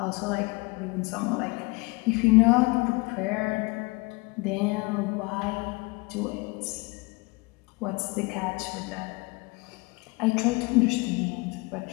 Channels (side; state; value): right; quieter; 26.3 dB